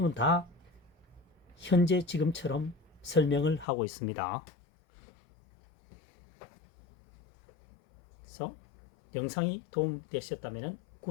다 현재 지금처럼 설명을 하고 있습니다. 그래서 영상이 도움되셨다면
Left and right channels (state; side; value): drops out; right; at 3.7 s